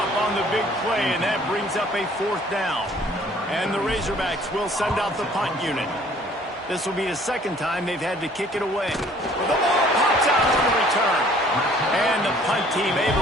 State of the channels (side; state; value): both; normal; correlation 0.56